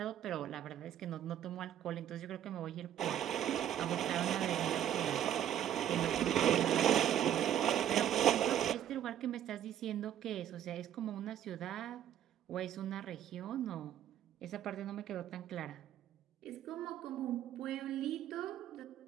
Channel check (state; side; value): quieter; left; 10.8 dB